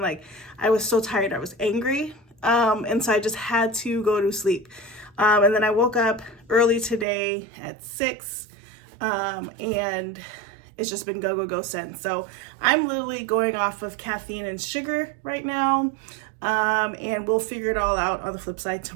Like, I was so tired. I was angry. And so I just had to go to sleep. And then I woke up early today at 6, and it's just been go since. So I'm literally going off of caffeine and sugar right now. And we'll figure it all out on the flip side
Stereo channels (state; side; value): drops out; left; at 7.1 s